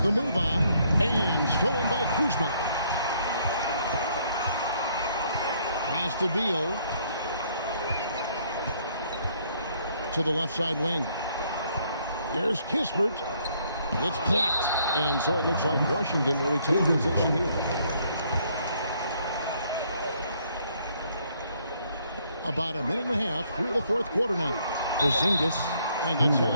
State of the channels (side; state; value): both; inverted; correlation -0.67